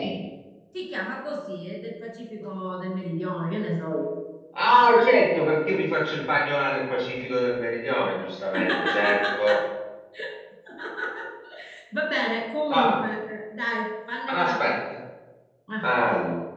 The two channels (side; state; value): both; identical; correlation 1.00